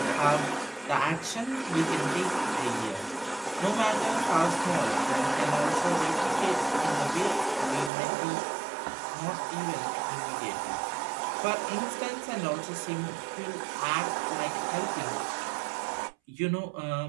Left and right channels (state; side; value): drops out; left; at 7.9 s